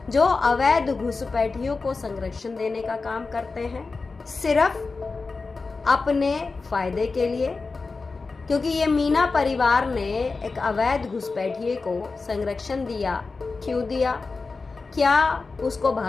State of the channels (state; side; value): quieter; right; 4.1 dB